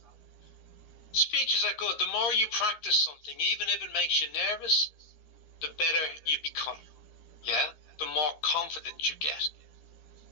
Speeches are good. The more you practice something, even if it makes you nervous, the better you become. Yeah? The more confident you get.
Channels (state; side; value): late; right; 13 ms